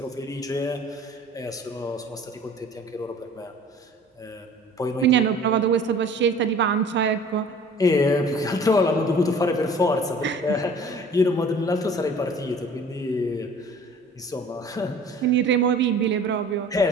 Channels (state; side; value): normal; both; correlation 0.48